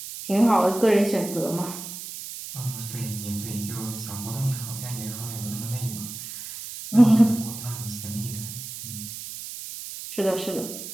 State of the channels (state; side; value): noise; right; hiss, 10 dB below the sound